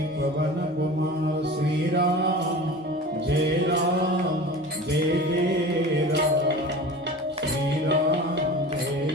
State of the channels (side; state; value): both; normal; correlation 0.36